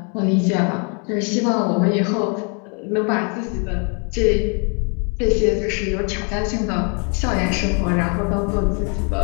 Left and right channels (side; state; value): right; quieter; 36.9 dB